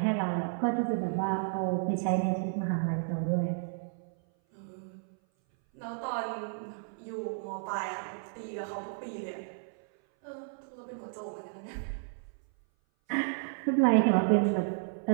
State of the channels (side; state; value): left; silent; 56 dB below the other